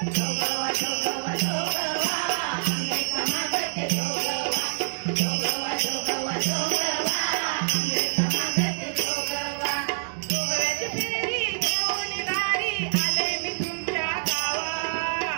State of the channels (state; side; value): silent; left; digital silence